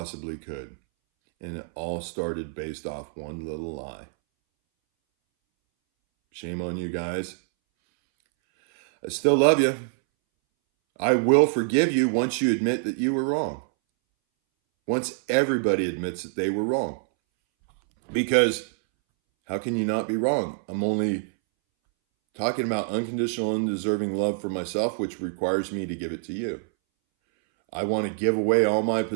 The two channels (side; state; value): left; silent; 61 dB below the other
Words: could. And it all started based off one little lie. Shame on you guys. I still love you. I will forgive you once you admit that you were wrong. Once everybody admits that they were wrong. Because how can you not be wrong? I'm only talking about unconditional, undeserving love for myself, which requires me to give it to you. I want to give away all my